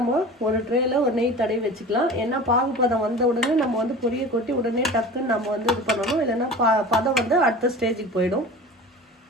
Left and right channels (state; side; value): normal; both; correlation 0.37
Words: ஒரு ட்ரேயில் ஒரு நெய் தடவி வச்சுக்கலாம். ஏன்னா பாகுப்பதம் வந்த உடனே நம்ம வந்து பொரியை கொட்டி உடனே டக்குன்னு நம்ம வந்து இது பண்ணணும். இல்லைன்னா பதம் வந்து அடுத்த ஸ்டேஜுக்கு போயிடும்.